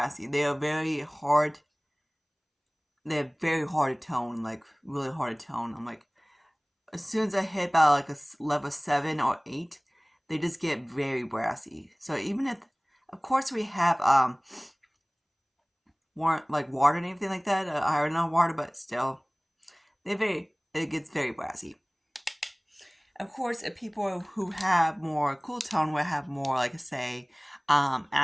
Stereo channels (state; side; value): identical; both; correlation 1.00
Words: They are very hard. They're very hard to tone, like really hard to tone. I'm like, as soon as I hit about like a level 7 or 8, they just get very brassy. So even if, of course, we have water and everything like that, iron on water, but still, it gets very brassy. Of course, if people who have more cool tone will have more, like, say,